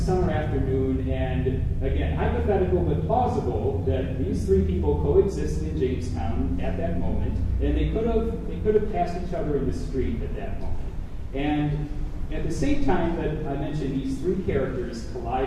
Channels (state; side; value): identical; both; correlation 1.00